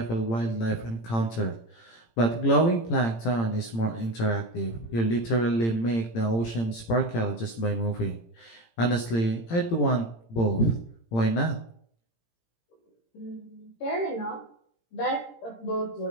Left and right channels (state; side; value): late; right; 18 ms